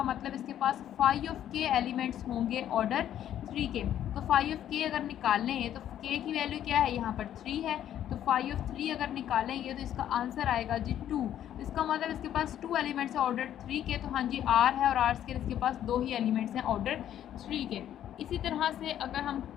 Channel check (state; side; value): quieter; right; 11.0 dB